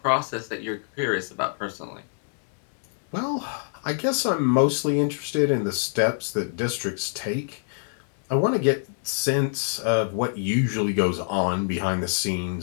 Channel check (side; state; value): right; silent; 62 dB below the other